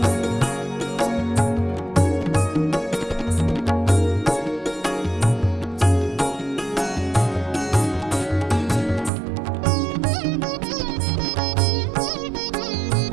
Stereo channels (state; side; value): drops out; left; at 9.1 s